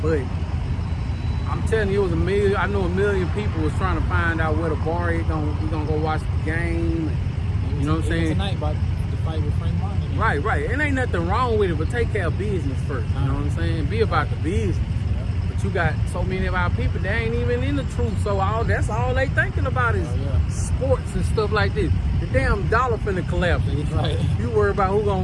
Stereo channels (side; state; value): both; identical; correlation 1.00